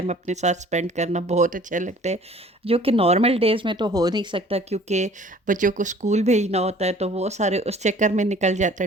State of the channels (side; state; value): both; normal; correlation 0.52